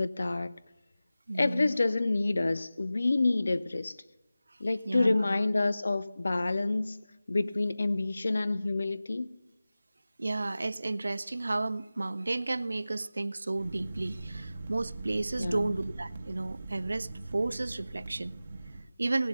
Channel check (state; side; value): inverted; both; correlation -0.96